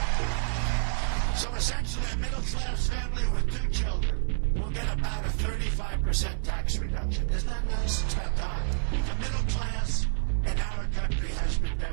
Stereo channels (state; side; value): silent; left; 56 dB below the other